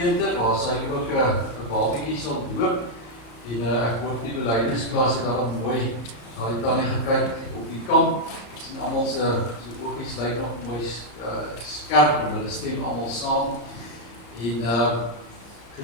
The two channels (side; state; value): right; late; 34 ms